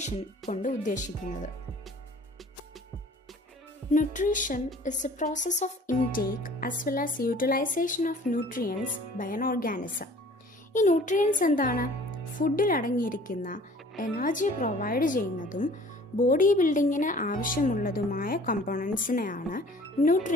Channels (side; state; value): both; normal; correlation 0.50